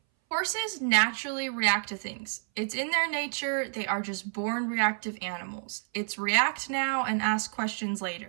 Horses naturally react to things. It's in their nature. They are just born reactive animals. It's react now and ask questions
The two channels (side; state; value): left; silent; 58 dB below the other